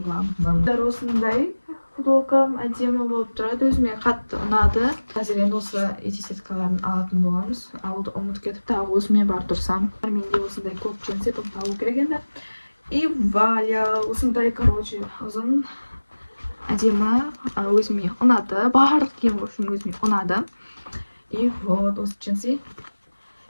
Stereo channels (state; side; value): inverted; both; correlation -1.00